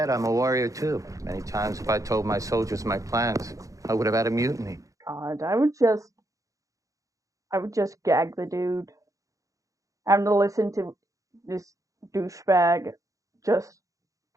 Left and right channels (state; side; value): late; left; 0.16 ms